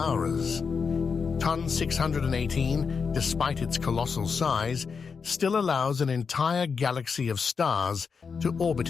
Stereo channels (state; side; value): quieter; right; 5.6 dB